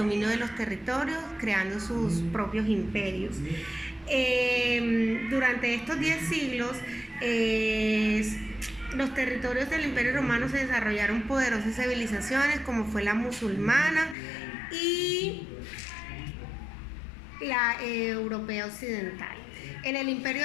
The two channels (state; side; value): drops out; right; at 14.2 s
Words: de los territorios, creando sus propios imperios. Durante estos 10 siglos, los territorios del Imperio Romano se desarrollaron poderosas civilizaciones como fue la musulmana y la europea occidental. En el